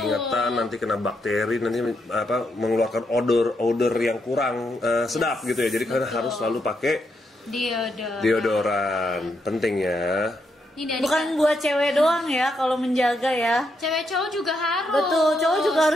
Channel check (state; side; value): normal; both; correlation 0.80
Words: nanti kena bakteri, nanti mengeluarkan odor yang kurang sedap gitu ya. Jadi kalian harus selalu pakai deodoran, penting ya. Bukan buat cewek doang ya kalau menjaga ya. Cewek cowok juga harus. Betul, cowok juga